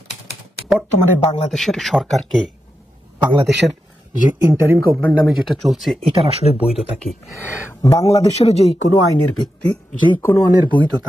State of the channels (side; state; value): both; normal; correlation 0.88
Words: বর্তমানে বাংলাদেশের সরকারকে, বাংলাদেশের যে ইন্টারিম গভর্নমেন্ট নামে যেটা চলছে, এটার আসলে বৈধতা কি? বাংলাদেশের যেই কোনো আইনের ভিত্তি, যেই কোনো আইনের